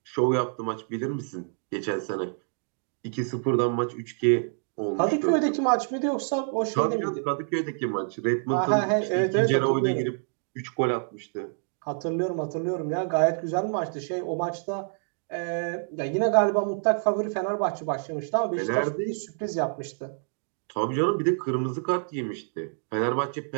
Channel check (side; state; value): left; silent; 60 dB below the other